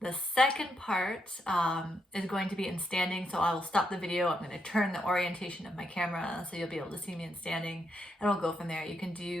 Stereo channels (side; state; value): both; normal; correlation 0.80